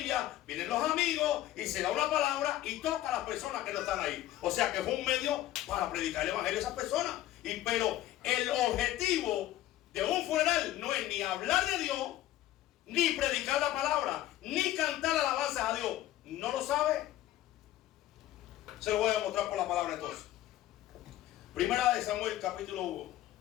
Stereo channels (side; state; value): right; quieter; 14.2 dB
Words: vienen los amigos y se da una palabra y toca a las personas que no están ahí. O sea que fue un medio para predicar el evangelio a esas personas. Pero el objetivo de un funeral no es ni hablar de Dios, ni predicar la palabra, ni cantar alabanzas a Dios. ¿No lo sabe? Se lo voy a demostrar por la palabra entonces. Primera de Samuel capítulo 1.